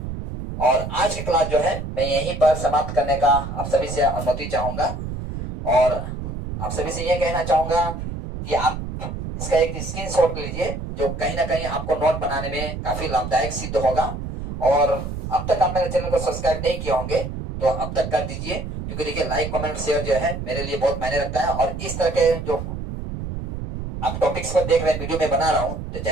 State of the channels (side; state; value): right; noise; rumble, 6 dB below the sound